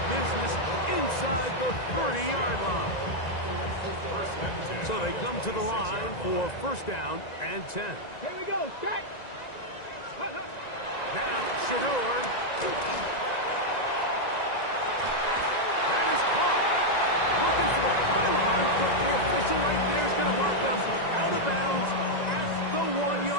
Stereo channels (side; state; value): right; late; 1.9 ms